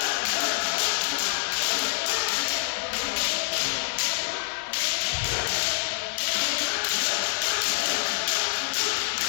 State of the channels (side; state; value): right; silent; digital silence